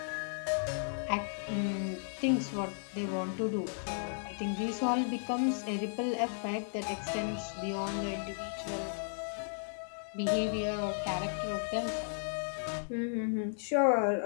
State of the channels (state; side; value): silent; right; digital silence